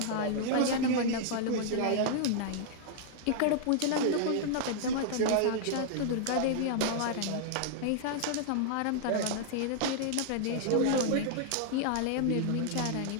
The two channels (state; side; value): different; both; correlation -0.01